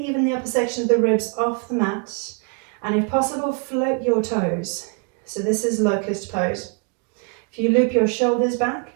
the upper section of the ribs off the mat, and if possible, float your toes. So this is Locust Pose. If you loop your shoulders back,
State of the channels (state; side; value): quieter; left; 35.5 dB